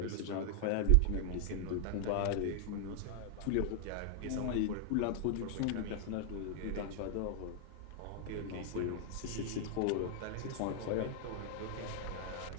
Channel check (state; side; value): different; both; correlation 0.00